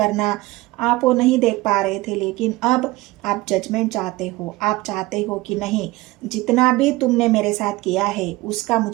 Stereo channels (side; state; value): left; quieter; 20.0 dB